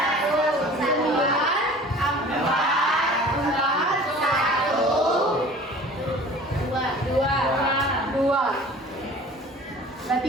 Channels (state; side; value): normal; both; correlation 0.44